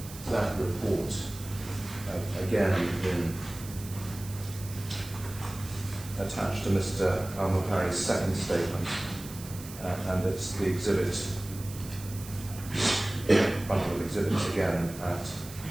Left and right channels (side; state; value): right; noise; hiss, 15 dB below the sound